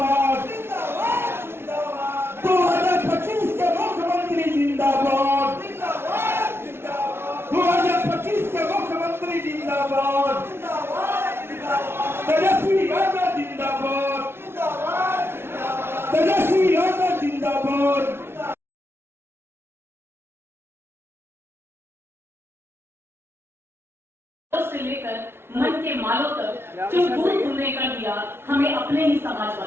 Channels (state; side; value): late; left; 0.12 ms